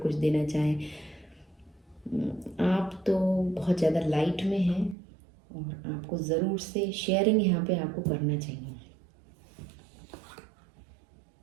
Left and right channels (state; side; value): drops out; left; at 5.0 s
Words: देना चाहें। आप तो बहुत ज़्यादा लाइट में हैं और आपको ज़रूर से शेयरिंग यहाँ पे आपको करना चाहिए।